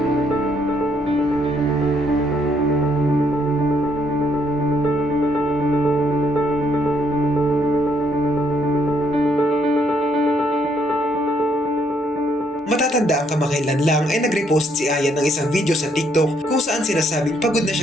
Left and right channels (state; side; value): normal; both; correlation 0.71